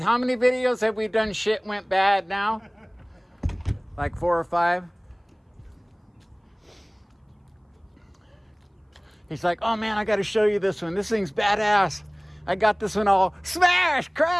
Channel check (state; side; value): identical; both; correlation 1.00